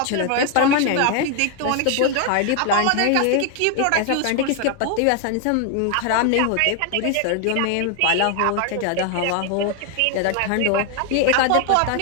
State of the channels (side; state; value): both; different; correlation 0.00